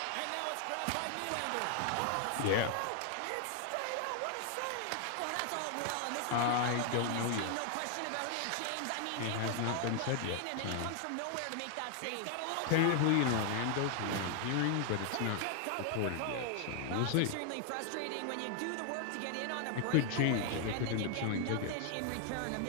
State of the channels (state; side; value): different; both; correlation 0.00